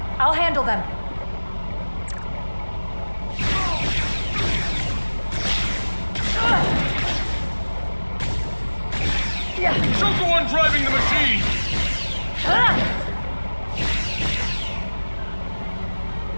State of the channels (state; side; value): inverted; both; correlation -1.00